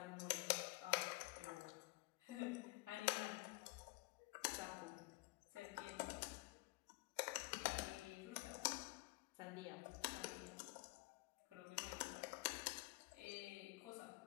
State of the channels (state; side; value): quieter; right; 24.1 dB